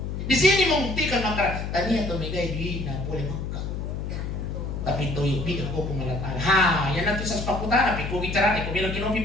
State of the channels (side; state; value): left; noise; hum, 4 dB below the sound